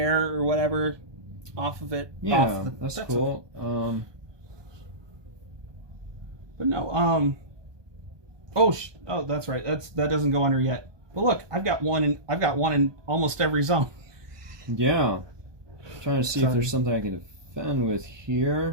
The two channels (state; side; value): late; left; 1.2 ms